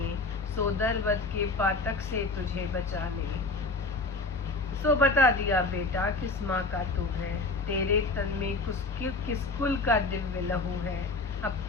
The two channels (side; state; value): right; quieter; 3.4 dB